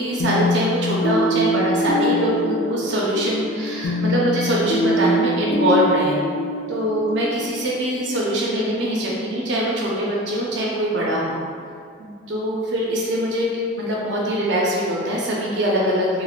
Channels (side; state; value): both; normal; correlation 0.36